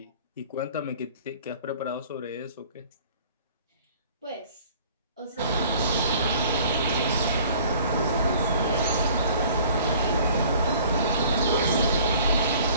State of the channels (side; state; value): both; inverted; correlation -0.51